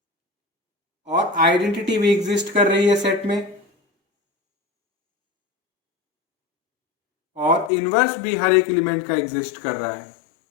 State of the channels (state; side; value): drops out; right; at 7.7 s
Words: और आइडेंटिटी भी एग्जिस्ट कर रही है सेट में, और इनवर्स भी हर एक एलिमेंट का एग्जिस्ट कर रहा है।